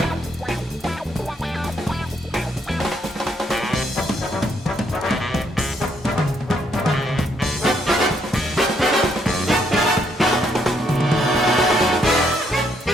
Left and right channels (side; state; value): both; normal; correlation 0.73